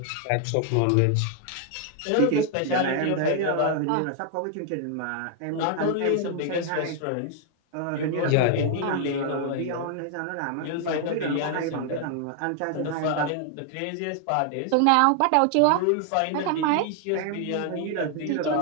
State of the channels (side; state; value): both; different; correlation 0.00